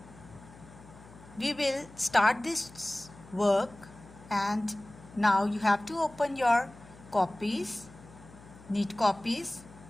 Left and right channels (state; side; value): noise; left; hum, 21 dB below the sound